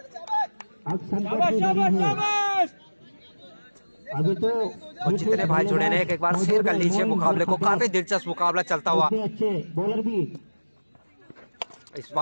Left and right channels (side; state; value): both; inverted; correlation -1.00